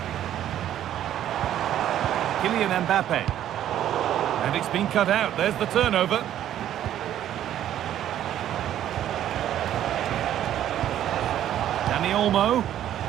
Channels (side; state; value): left; quieter; 11.4 dB